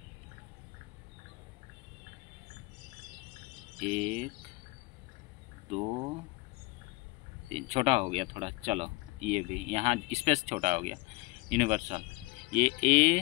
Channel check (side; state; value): right; quieter; 24.1 dB